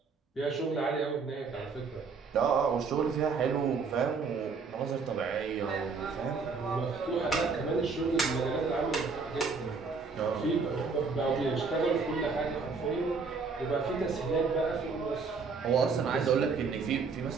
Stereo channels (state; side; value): quieter; left; 4.8 dB